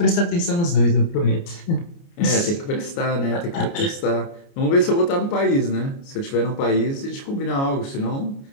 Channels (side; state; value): right; late; 29 ms